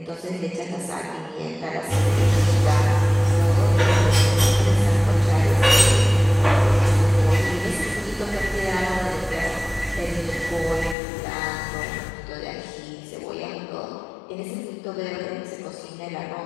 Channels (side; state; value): right; drops out; at 11.0 s